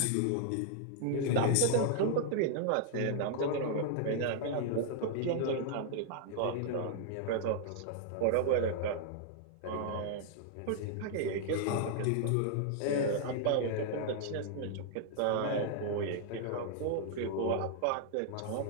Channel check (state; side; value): different; both; correlation -0.01